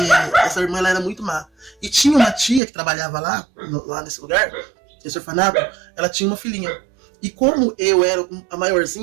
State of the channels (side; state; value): left; drops out; at 2.6 s